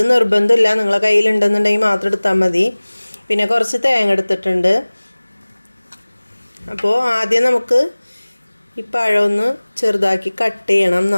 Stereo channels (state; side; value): inverted; both; correlation -1.00